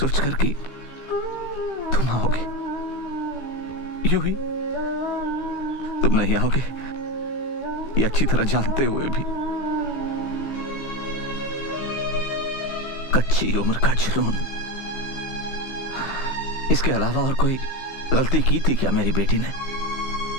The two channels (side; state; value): right; late; 15 ms